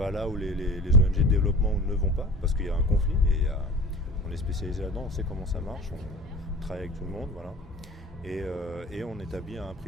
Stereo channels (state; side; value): normal; both; correlation 0.38